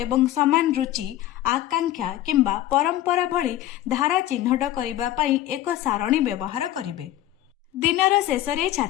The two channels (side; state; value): right; quieter; 13.7 dB